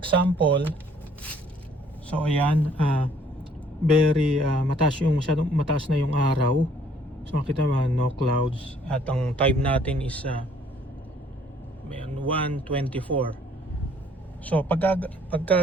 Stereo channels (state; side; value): normal; both; correlation 0.61